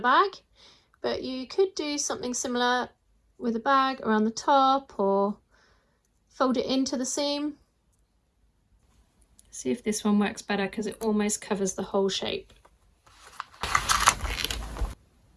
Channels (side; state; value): both; identical; correlation 1.00